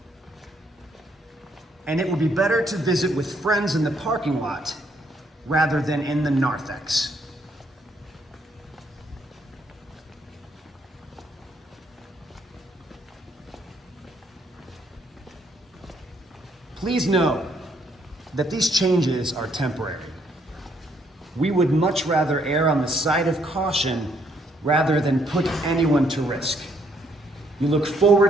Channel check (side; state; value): both; normal; correlation 0.70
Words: And it would be better to visit with friends in the parking lot rather than in the narthex. Please know that these changes are temporary. We would much rather err on the side of caution rather than put anyone to risk. We look